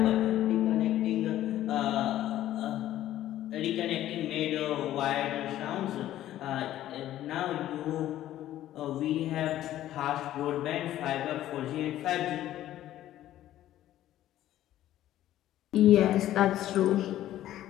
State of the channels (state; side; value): quieter; right; 13.2 dB